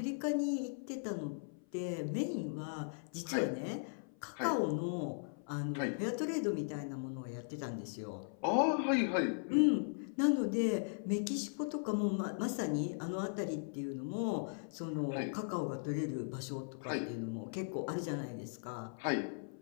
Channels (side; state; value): right; silent; 52 dB below the other